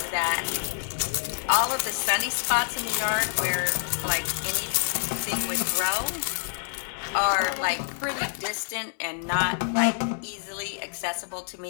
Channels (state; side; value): silent; right; digital silence